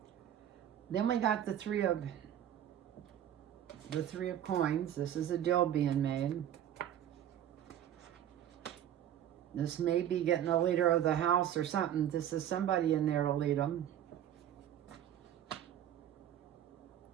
Then we got the 3 of Coins. This is a deal being made. This may be getting a leader of the house or something. This is somebody in there to lead them.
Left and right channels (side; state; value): left; quieter; 10.7 dB